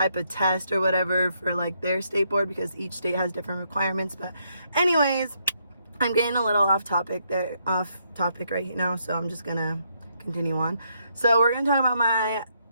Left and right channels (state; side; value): inverted; both; correlation -0.75